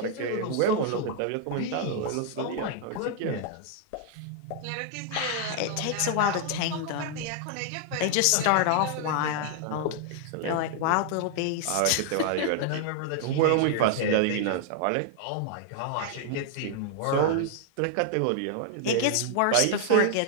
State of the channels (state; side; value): different; both; correlation 0.00